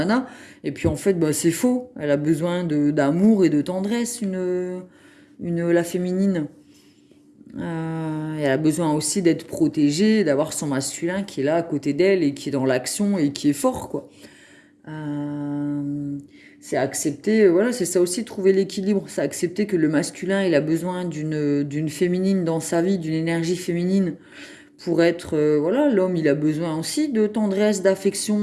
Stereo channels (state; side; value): identical; both; correlation 1.00